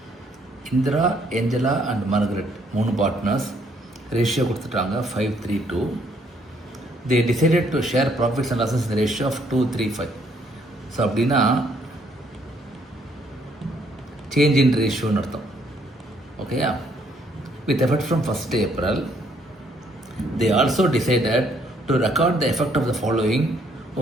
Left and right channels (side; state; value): both; normal; correlation 0.68